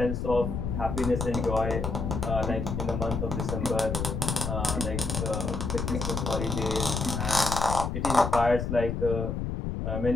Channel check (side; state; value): left; noise; rumble, 3 dB below the sound